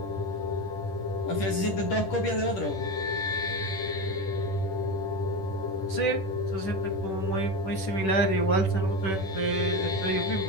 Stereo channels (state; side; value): late; right; 10 ms